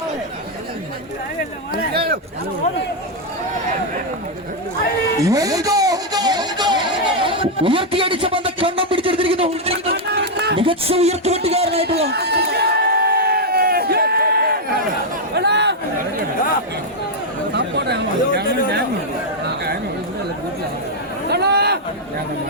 ഉയർത്തിയടിച്ച പന്ത് കണ്ണം പിടിച്ചെടുത്തിരിക്കുന്നു. മികച്ച ഉയർത്തിവെട്ടുകാരനായിട്ടുള്ള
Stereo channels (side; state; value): both; normal; correlation -0.01